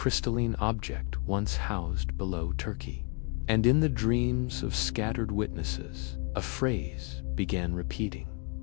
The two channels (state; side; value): quieter; right; 35.7 dB